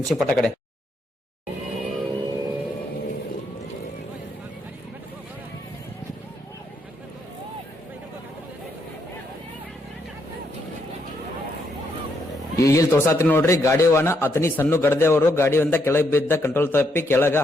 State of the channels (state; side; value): normal; both; correlation 0.76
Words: ಪಟ್ಟ ಕಡೆ. ಈಗ ಇಲ್ಲಿ ತೋರ್ಸಾತ್ರಿ ನೋಡ್ರಿ ಗಾಡಿ ವಾಹನ ಅತನಿ ಸಣ್ಣ ಗಡದೆ ಅವರು ಗಾಡಿಯಿಂದ ಕೆಳಗೆ ಬಿದ್ದ ಕಂಟ್ರೋಲ್ ತಪ್ಪಿ ಕೆಳಗ